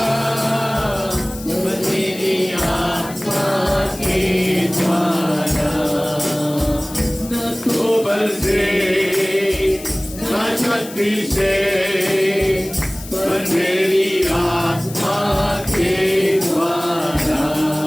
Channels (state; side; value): noise; left; hiss, 15 dB below the sound